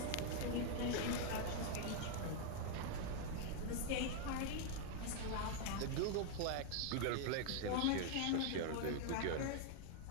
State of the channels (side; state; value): both; different; correlation 0.00